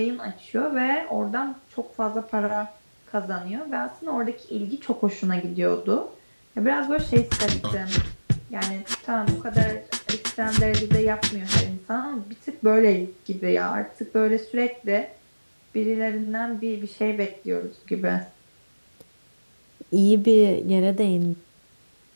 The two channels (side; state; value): both; inverted; correlation -1.00